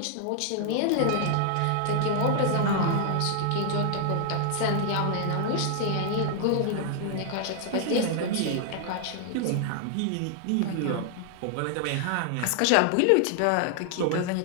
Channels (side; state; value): both; different; correlation 0.00